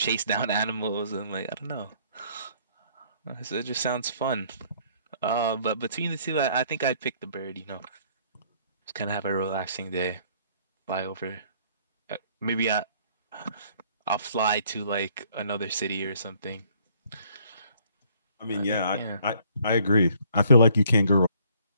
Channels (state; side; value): inverted; both; correlation -0.61